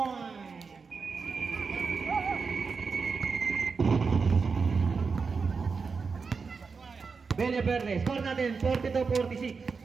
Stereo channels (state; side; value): quieter; left; 5.0 dB